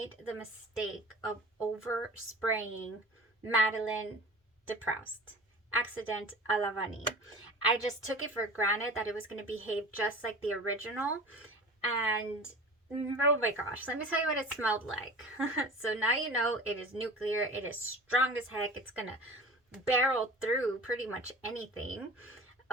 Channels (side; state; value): both; normal; correlation 0.37